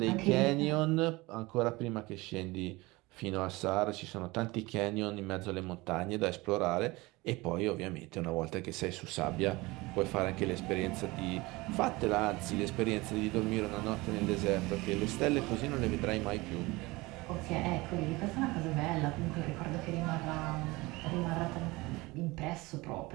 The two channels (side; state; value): left; quieter; 22.2 dB